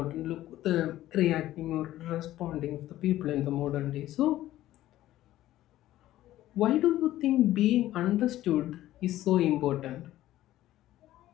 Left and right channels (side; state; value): right; quieter; 14.4 dB